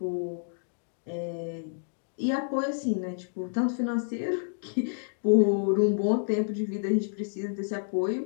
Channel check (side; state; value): right; silent; digital silence